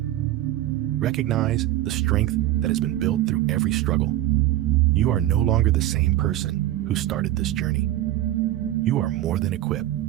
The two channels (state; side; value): quieter; left; 14.2 dB